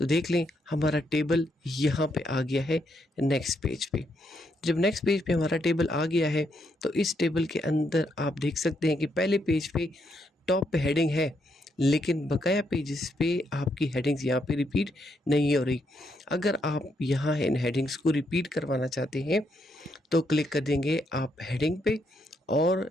देख लें हमारा टेबल यहाँ पे आ गया है नेक्स्ट पेज पे। जब नेक्स्ट पेज पे हमारा टेबल आ गया है तो इस टेबल के अंदर आप देख सकते हैं कि पहले पेज पे टॉप पे हेडिंग है, लेकिन बकाया पेजेस पे आपकी हेडिंग्स यहाँ पे रिपीट नहीं हो रही। अगर आप यहाँ इन हेडिंग्स को रिपीट करवाना चाहते हैं तो क्लिक कर देंगे आप हेडिंग पे और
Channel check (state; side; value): normal; both; correlation 0.77